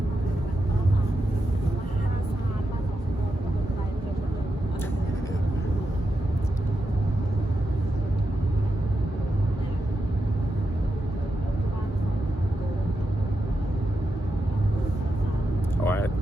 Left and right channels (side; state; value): both; normal; correlation 0.87